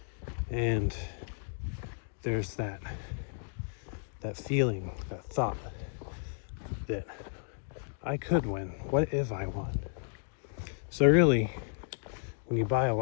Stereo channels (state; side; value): silent; right; digital silence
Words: and there's that feeling, that thought that I could win. What if I won? So really, when you buy a